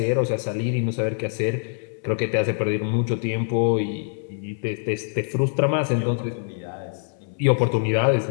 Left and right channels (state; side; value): silent; right; 62 dB below the other